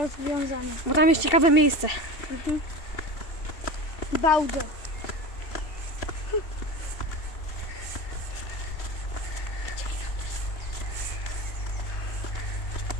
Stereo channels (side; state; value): right; late; 2.6 ms